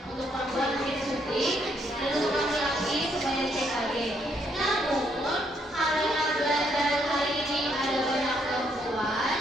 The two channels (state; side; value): normal; both; correlation 0.73